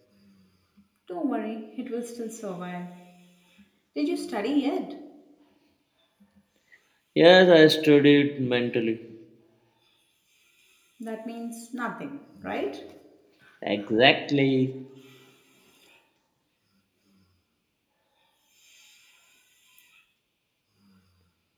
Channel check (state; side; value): identical; both; correlation 1.00